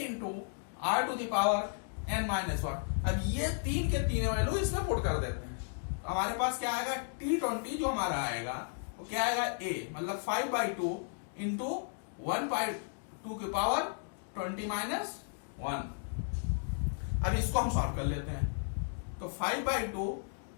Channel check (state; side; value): silent; right; digital silence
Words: r to the power n minus one. अब ये तीन के तीन वैल्यू इसमें पुट कर देते हैं, तो हमारे पास क्या आएगा, T20 जो हमारा आएगा वो क्या आएगा, ए मतलब 5/2 इंटू 1/2 की पावर 20 माइनस 1। अब इसको हम सॉल्व कर लेते हैं। तो 5/2